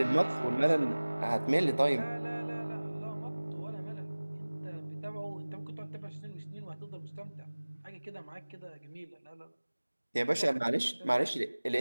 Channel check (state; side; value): inverted; both; correlation -1.00